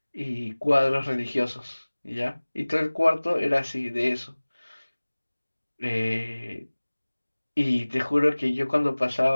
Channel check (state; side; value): inverted; both; correlation -1.00